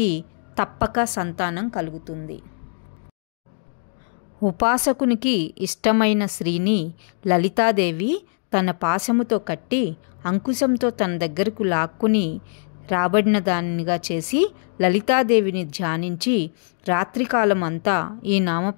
తప్పక సంతానం కలుగుతుంది. ఉపాసకునికి ఇష్టమైన స్త్రీని లలితాదేవి తన పాశముతో కట్టి అంకుశంతో తన దగ్గరకు లాక్కుని రాబడిన దానిగా చేసి లలితాదేవిని ధ్యానించి రాత్రికాలం అంతా ఈ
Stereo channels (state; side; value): silent; right; 63 dB below the other